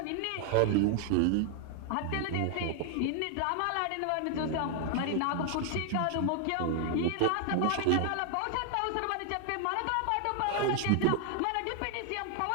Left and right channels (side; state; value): both; different; correlation 0.00